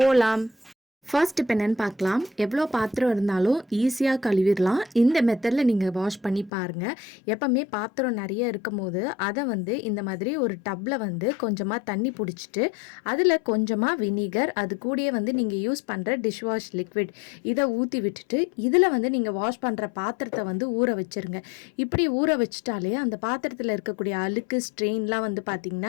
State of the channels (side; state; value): right; drops out; at 6.5 s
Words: போலாம். ஃபர்ஸ்ட் இப்போ என்னென்னு பார்க்கலாம். எவ்வளோ பாத்திரம் இருந்தாலும் ஈஸியாக கழுவிடலாம். இந்த மெத்தடில் நீங்கள் வாஷ் பண்ணி பாருங்கள். எப்போவுமே பாத்திரம் நிறைய இருக்கும் போது அதை இந்த மாதிரி ஒரு டப்பில் கொஞ்சமாக தண்ணி பிடிச்சிட்டு அதில் கொஞ்சமாக வினிகர், அது கூடயே நீங்கள் யூஸ் பண்ணுற டிஷ் வாஷ் லிக்விட் இதை ஊற்றி விட்டுட்டு இதில் நீங்கள் வாஷ் பண்ணுற பாத்திரத்தை ஊற வச்சுருங்க. இப்படி ஊற வச்சுட்டாலே அந்த பாத்திரத்தில் இருக்கக்கூடிய அழுக்கு ஸ்ட்ரெயின்லாம்